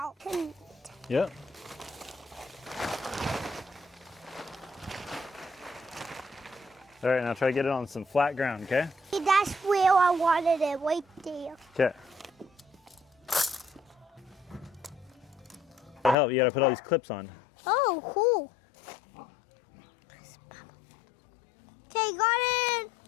Yep. All right, now try to get it on some flat ground, okay? That's where I wanted it, right there. Okay. To help, you gotta put all these clips on. Oh, cool. Okay, got it.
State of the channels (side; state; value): right; drops out; at 16.2 s